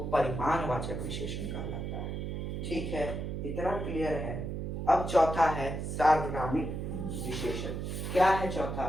परिमाणवाचक विशेषण कहलाता है, ठीक है। इतना क्लियर है। अब चौथा है सार्वनामिक विशेषण। क्या है चौथा?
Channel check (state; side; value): noise; right; hum, 4 dB below the sound